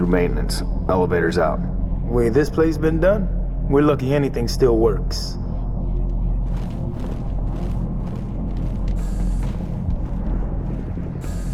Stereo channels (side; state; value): both; identical; correlation 1.00